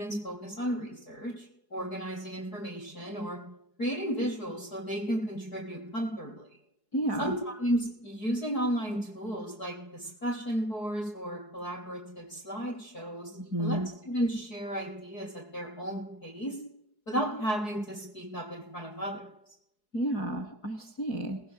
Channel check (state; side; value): late; right; 4.7 ms